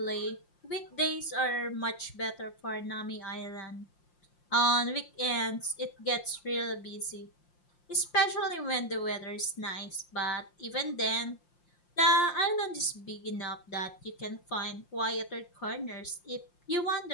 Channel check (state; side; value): late; right; 5.7 ms